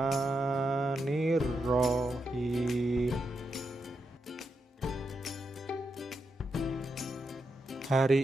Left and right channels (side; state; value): both; normal; correlation 0.85